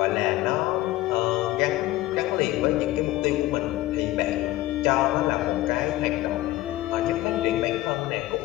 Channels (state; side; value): quieter; right; 16.6 dB